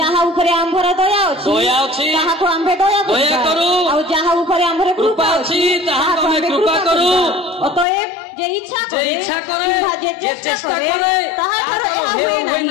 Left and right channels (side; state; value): right; drops out; at 7.9 s